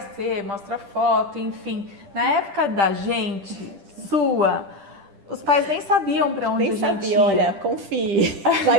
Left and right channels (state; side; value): late; left; 10 ms